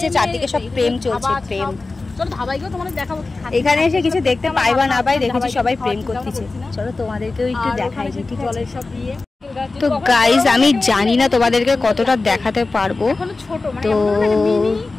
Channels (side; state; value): right; quieter; 3.6 dB